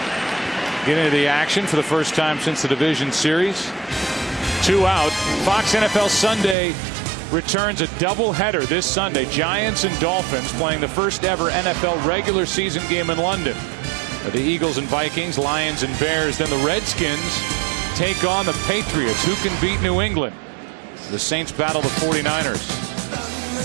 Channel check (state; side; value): drops out; left; at 6.6 s